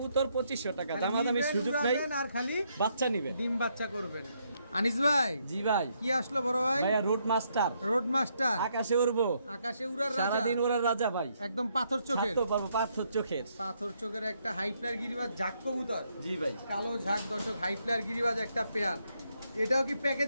2500 টাকা। দামাদামি সুযোগ নাই। আর খালি বাচ্চা নিবেন, ডিম বাচ্চা করবেন। আনিস ভাই। জি ভাই। কি আসলো বড় ভাই? ভাই রোড মাস্টার। Road master. আকাশে উড়বো, আকাশে উড়ার রাজা, সারা দিন উড়ার রাজা ভাই। একদম পাথর চোখের। ছাড়তে পারবো পাথর চোখের। পাথর চোখের একটা হাই ফ্লায়ার গিরিবাজ ঝাক কবুতর। জি ভাই। কালো ঝাক দর্শক, হাই ফ্লায়ার গিরিবাজ একটা পেয়ার। এটাও কি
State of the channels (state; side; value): inverted; both; correlation -0.75